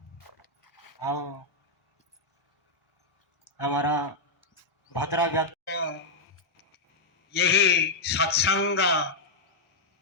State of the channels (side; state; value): right; quieter; 3.0 dB